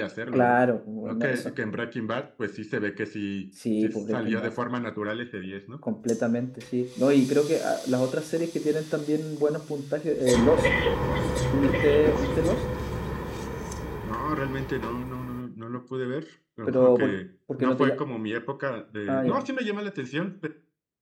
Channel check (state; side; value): identical; both; correlation 1.00